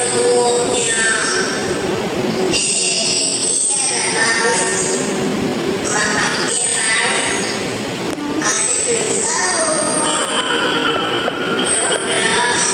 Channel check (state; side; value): identical; both; correlation 1.00